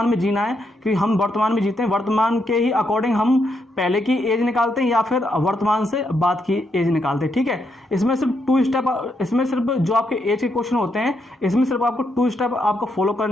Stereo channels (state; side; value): normal; both; correlation 0.79